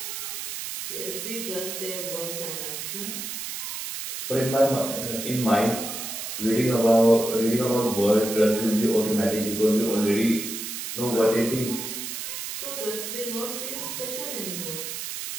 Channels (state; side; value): noise; right; hiss, 6 dB below the sound